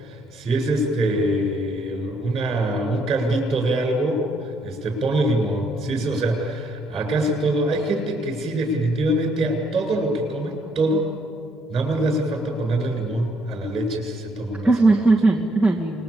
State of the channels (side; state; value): both; normal; correlation 0.71